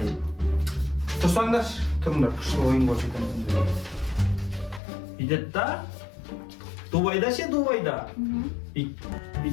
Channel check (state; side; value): drops out; right; at 4.8 s